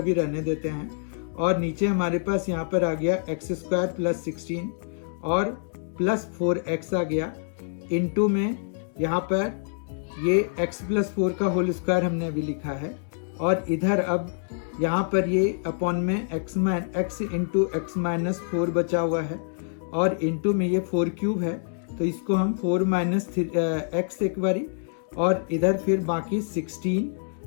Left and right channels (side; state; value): right; silent; digital silence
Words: रहने देते हैं, और नीचे हमारे पास यहाँ पर आ गया x स्क्वायर प्लस 16 और प्लस 4x आ गया, इनटू में यहाँ पर ये x प्लस 4 का होल स्क्वायर हमने अभी लिखा है, और इधर अब यहाँ पर ये अपॉन में x इंटू x माइनस 4 बचा हुआ है, और इंटू में ये 4 क्यूब है, तो इसको हम 4 माइनस x एक बारी, और इधर फिर बाकी 16